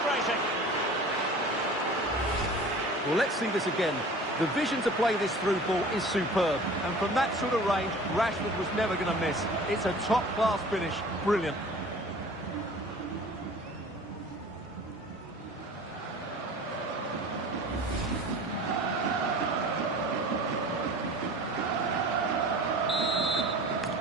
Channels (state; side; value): normal; both; correlation 0.43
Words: Well, let's see this again. The vision to play this through ball is superb. And from that sort of range, Rashford was never going to miss. It's a top-class finish. Brilliant.